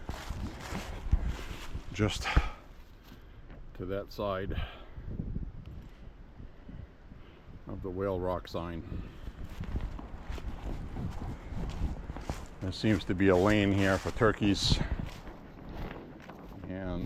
just to that side of the Whale Rock sign. There seems to be a lane here for turkeys.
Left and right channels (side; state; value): both; identical; correlation 1.00